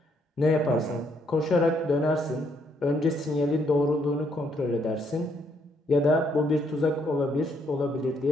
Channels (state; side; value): normal; both; correlation 0.72